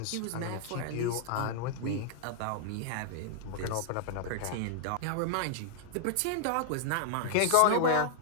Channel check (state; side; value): different; both; correlation 0.00